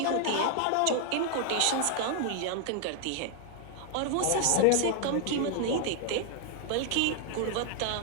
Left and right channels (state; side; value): different; both; correlation 0.00